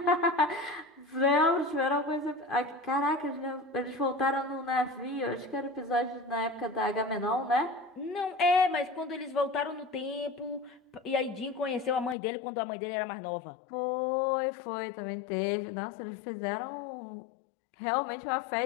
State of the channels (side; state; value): right; drops out; at 12.2 s